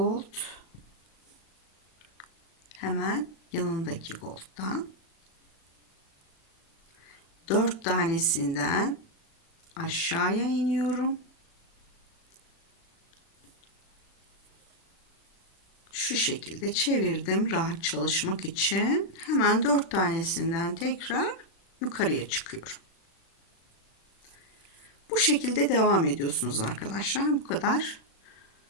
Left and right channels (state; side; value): late; right; 36 ms